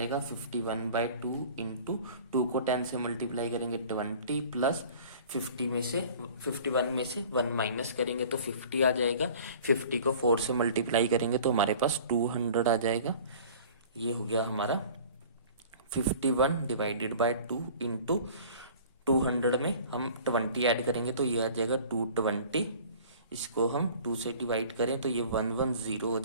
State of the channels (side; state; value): both; inverted; correlation -0.46